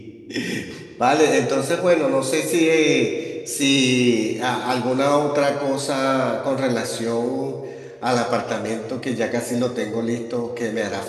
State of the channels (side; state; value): both; identical; correlation 1.00